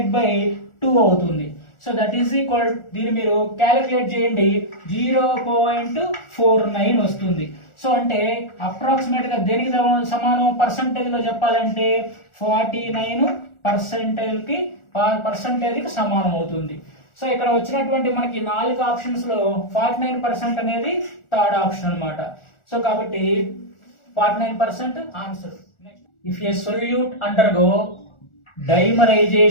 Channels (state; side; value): late; right; 1.4 ms